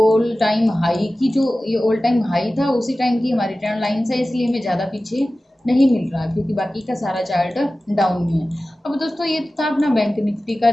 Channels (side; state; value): both; normal; correlation 0.96